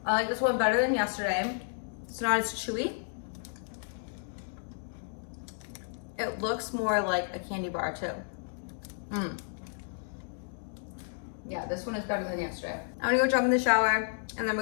I like this one better than yesterday. It's not as chewy. It looks more like a candy bar too. Yeah, this one is better than yesterday. I'm gonna go jump in the shower, and then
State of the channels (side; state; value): right; silent; digital silence